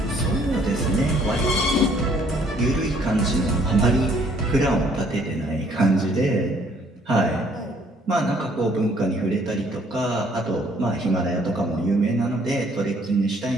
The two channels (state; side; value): normal; both; correlation 0.62